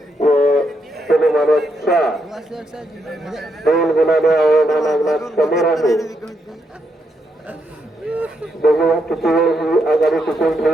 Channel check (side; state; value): both; normal; correlation 0.80